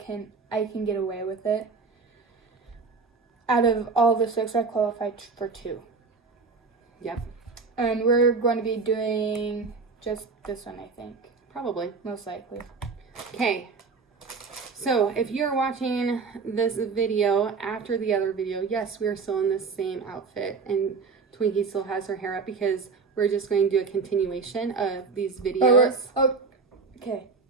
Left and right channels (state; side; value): quieter; left; 4.7 dB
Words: get away with it. Out of all the 6, I qualified for 2. Yep, And we're going to be doing just this one, I think. probably. Most likely. Okay, so if you're watching this video after the other video, yes, we are still in the same outfit, and Twinkie still has her hair up because we're just going to do a continuation of these videos. Okay,